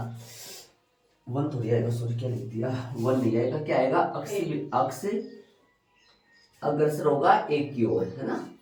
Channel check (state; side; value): identical; both; correlation 1.00